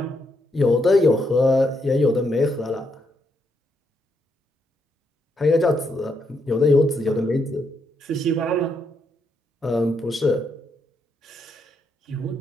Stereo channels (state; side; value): normal; both; correlation 0.78